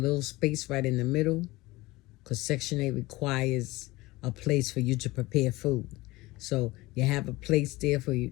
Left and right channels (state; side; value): quieter; right; 20.5 dB